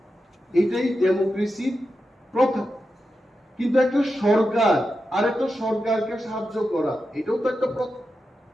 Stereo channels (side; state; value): both; normal; correlation 0.89